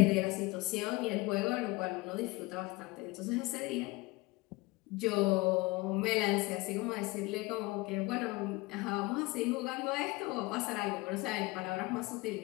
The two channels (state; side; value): quieter; right; 22.6 dB